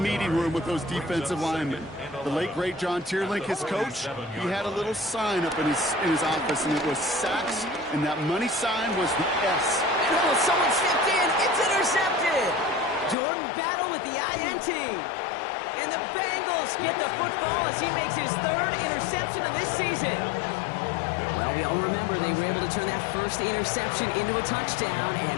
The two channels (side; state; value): right; drops out; at 13.2 s